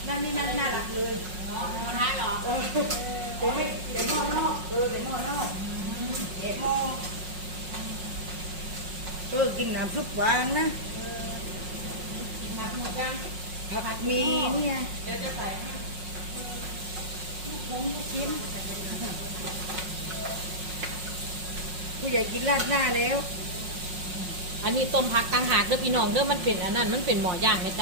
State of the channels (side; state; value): left; late; 5.5 ms